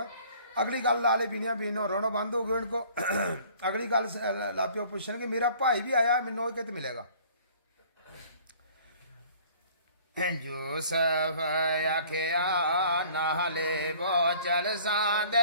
अगली गल लाले बिनिया बीनो रोना बंद हो गया इनको अगली गल लापियो पूछने कि मेरा भाई भी आया मैनू कित मिलेगा यूसुफ आखिया नाले वो चल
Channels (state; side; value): inverted; both; correlation -0.52